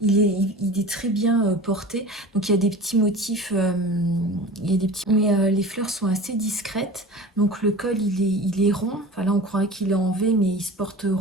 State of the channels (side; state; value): both; normal; correlation 0.36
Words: Il est très bien porté. Donc il y a des petits motifs, mais les fleurs sont assez discrètes. Donc le col, il est rond. Enfin là, on croirait qu'il est en V, mais il se porte